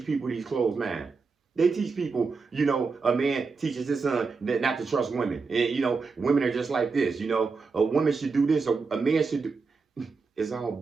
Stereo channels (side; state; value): left; quieter; 4.6 dB